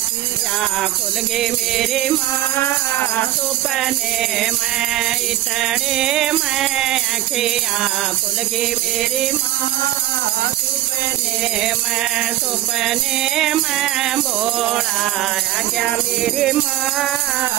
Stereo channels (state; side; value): quieter; left; 14.0 dB